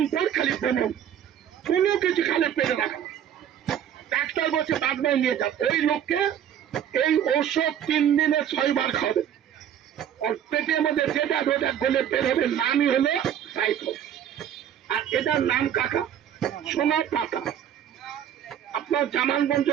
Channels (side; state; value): left; quieter; 9.7 dB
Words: পর খালি ভ্রমণ, কোনো কিছু খালে পেটে রাখা না। ডাক্তার বলছে বাদমাই নিয়ে যান, ওই লোককে এই ঔষধ 3 দিনে 6 বার খাবে। ওর পেটের মধ্যে যেটা রোজা গলে বের হবে নামই হলো টাইফয়েড। আর এটার নাম কাকা সোনা পাতা। আপনার জামালগঞ্জ